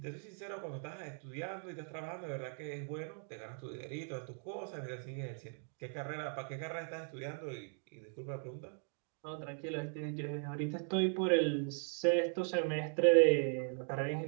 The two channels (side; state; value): left; silent; 52 dB below the other